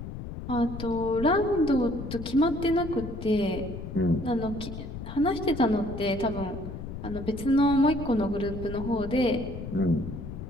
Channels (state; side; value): noise; left; rumble, 9 dB below the sound